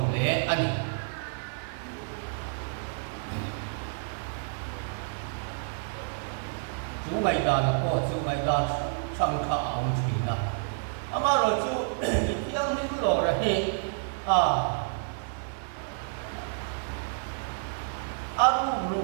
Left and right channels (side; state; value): left; silent; digital silence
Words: le ani chu mai da na ko chu mai da sang kha ong thui na ama ro chu thiang nim lo ra hi aru ru